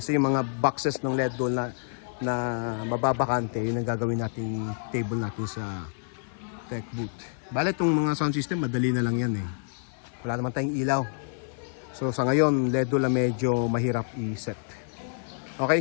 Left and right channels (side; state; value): right; silent; 59 dB below the other